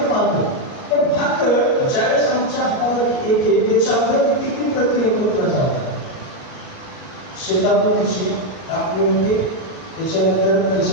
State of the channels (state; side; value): late; right; 37 ms